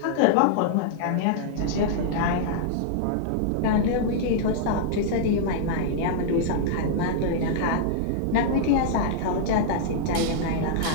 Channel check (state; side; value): different; both; correlation -0.02